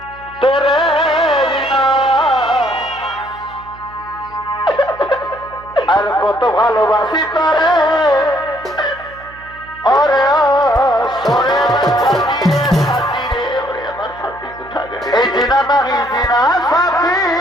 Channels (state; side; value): noise; right; hum, 21 dB below the sound